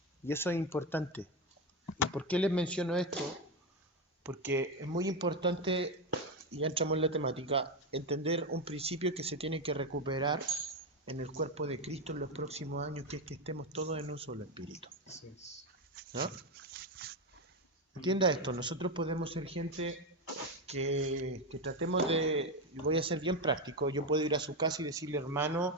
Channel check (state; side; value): normal; both; correlation 0.12